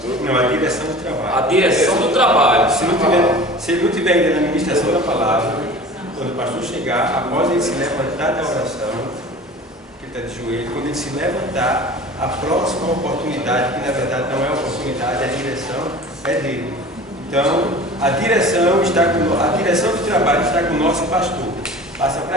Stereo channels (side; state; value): both; normal; correlation 0.40